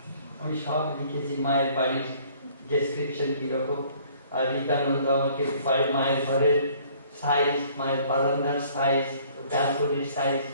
আমি সব লিখেছি, মায়ের বাড়ির ডেসক্রিপশন কিরকম। আর রীতানন্দ আমাকে মায়ের ঘরের সাইজ, মায়ের বারান্দার সাইজ, ব্যালকনির সাইজ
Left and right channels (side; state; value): both; inverted; correlation -0.57